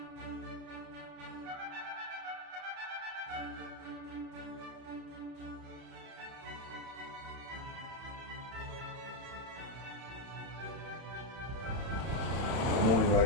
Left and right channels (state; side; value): late; left; 31 ms